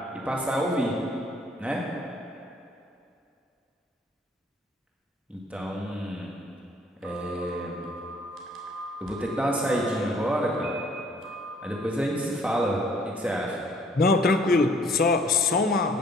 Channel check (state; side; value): normal; both; correlation 0.59